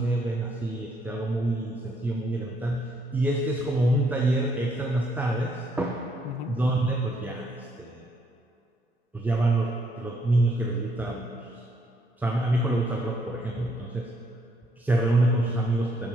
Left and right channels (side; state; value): both; normal; correlation 0.71